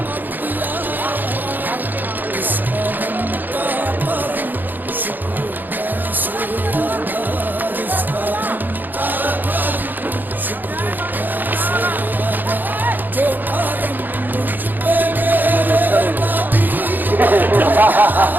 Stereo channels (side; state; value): left; late; 0.088 ms